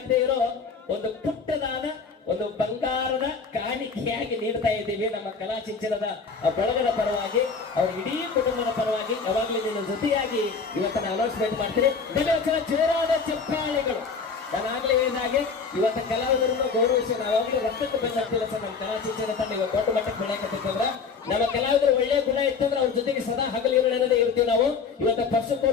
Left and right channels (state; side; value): quieter; right; 5.2 dB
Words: ಇರೋ ಒಂದು ಪುಟ್ಟದಾದ ಒಂದು ಬಂಗಾರದ ಕಾಣಿಕೆಯಾಗಿ ನೀಡ್ತಾ ಇದ್ದೀವಿ ನಮ್ಮ ಕಲಾ ಶಿಕ್ಷಣದ ಬಳಗದ ಪರವಾಗಿ ಅವ್ರ ಇಡೀ ಕುಟುಂಬದ ಪರವಾಗಿ ಯಾವಾಗಲೂ ನಿನ್ನ ಜೊತೆಯಾಗಿ ಇವತ್ತನ್ನ ಅನೌನ್ಸ್ಮೆಂಟ್ ಮಾಡ್ತೀನಿ. ಜೋರಾದ ಚಪ್ಪಾಳೆಗಳು. ನಾನಾಗ್ಲೇ ಹೇಳಿದಾಗೆ ಇವತ್ತು ಕಲಾವಿದರನ್ನು ಗೌರವಿಸಿ ನಾವಾಗಲೂ ರಕ್ತಕ್ಕೆ ಬಂದಿಲ್ಲ ಸರ್. ನಮ್ಮ ಕಲಾ ಶಿಕ್ಷಣ ತಂಡ ಇವಾಗ ದೊಡ್ಡ ಮಟ್ಟಕ್ಕೆ ಬೆಳೆಯಕತ್ತಿತ್ತಂದ್ರ ನಮ್ಮ ಕಲಾವಿದರು ಒಳ್ಳೆಯ ಗುಣ ಇತ್ತಂದ್ರೆ ಅವ್ರ ಜೊತೆಗೆ ಸದಾ ಹಗಲಿರುಳೇ ಇರ್ತೀವಿ ನಾವು. ಇವತ್ತು